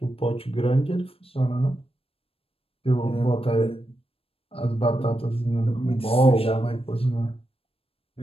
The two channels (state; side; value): late; right; 0.28 ms